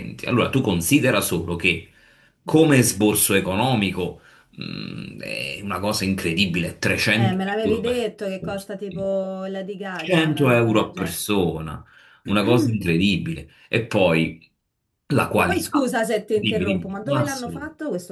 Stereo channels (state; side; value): identical; both; correlation 1.00